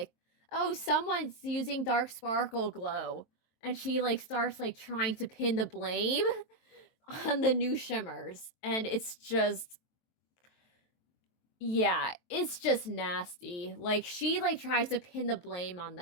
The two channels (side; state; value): right; late; 23 ms